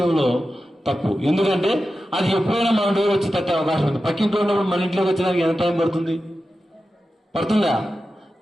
తప్పు. ఎందుకంటే అది ఎప్పుడైనా మన డోర్ వచ్చి తట్టే అవకాశం ఉంది. పక్కింట్లో ఉన్నప్పుడు మన ఇంట్లోకి వచ్చేదానికి ఎంత టైం పడుతుంది? పడుతుందా?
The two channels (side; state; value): both; normal; correlation 0.92